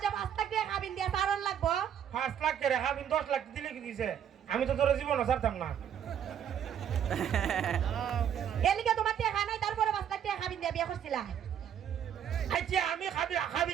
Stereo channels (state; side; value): quieter; left; 9.1 dB